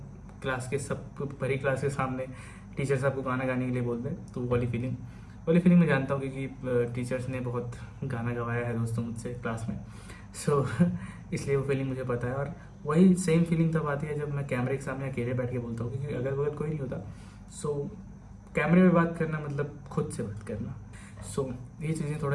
सब भरी क्लास के सामने टीचर्स आपको गाना गाने के लिए बोलते हैं, तो वो वाली फीलिंग मैं जानता हूँ, क्योंकि टीचर्स ने बहुत गाना गवाया है दोस्तों मुझसे क्लास में। सो इसलिए वो फीलिंग मुझे पता है। और वही सेम फीलिंग तब आती है जब मैं कैमरे के सामने अकेले बैठ के बोलता हूँ, क्योंकि अगल बगल कोई नहीं होता। सो कैमरे में बात करना मतलब खुद से बात करना। सो ये चीज़ें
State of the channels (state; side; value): identical; both; correlation 1.00